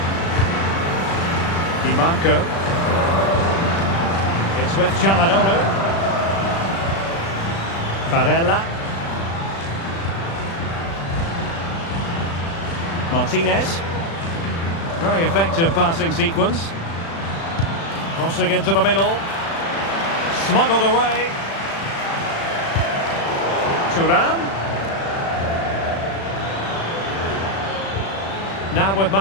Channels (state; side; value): late; right; 36 ms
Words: Di Marco. It's with Çalhanoğlu. Barella. Martinez. Very effective passing sequence. Crossing into the middle. Smuggled away. Thuram. Now with